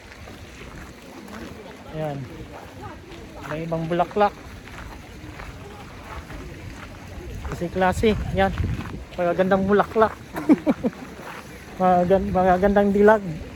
Yan. May ibang bulaklak. Klase. Yan. Magagandang bulaklak. Magagandang dilag.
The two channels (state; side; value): identical; both; correlation 1.00